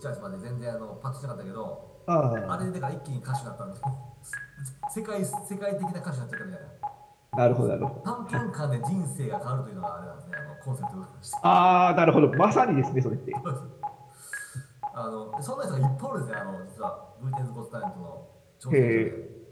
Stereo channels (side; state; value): both; identical; correlation 1.00